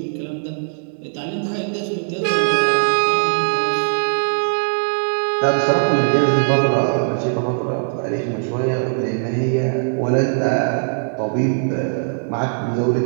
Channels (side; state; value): left; silent; digital silence